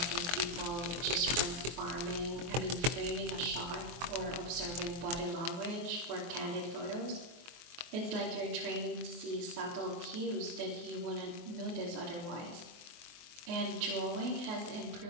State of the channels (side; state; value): left; late; 23 ms